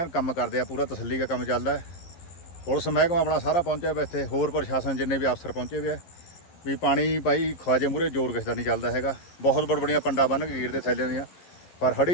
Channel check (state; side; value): late; right; 11 ms